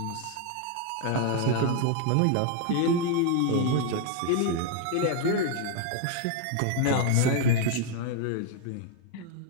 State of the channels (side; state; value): both; different; correlation 0.00